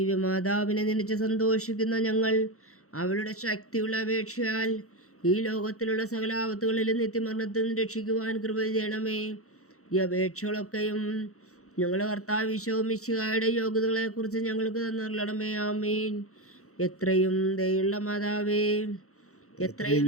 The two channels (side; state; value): right; late; 0.64 ms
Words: നനച്ച് സന്തോഷിക്കുന്ന ഞങ്ങൾ അവളുടെ ശക്തിയുള്ള അപേക്ഷയാൽ ഈ ലോകത്തിലുള്ള സകല ആപത്തുകളിലും നിത്യമരണത്തിൽ നിന്ന് രക്ഷിക്കുവാൻ കൃപ ചെയ്യണമേ. ഈ അപേക്ഷകളൊക്കെയും ഞങ്ങളുടെ കർത്താവ് ഈശോ മിശിഹായുടെ യോഗ്യതകളെക്കുറിച്ച് ഞങ്ങൾക്ക് തന്നിരണമേ. ആമേൻ. എത്രയും ദയുള്ള മാതാവേ, എത്രയും